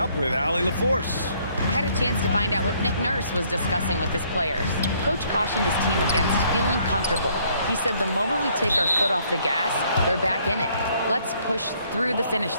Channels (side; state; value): both; inverted; correlation -0.65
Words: with Allie LaForce. had a chance to find out what Nick Nurse was discussing with his players. Coach cautioned his team against feeling comfortable. He said the moment we take our foot off the gas, they're back in it. Let's push through the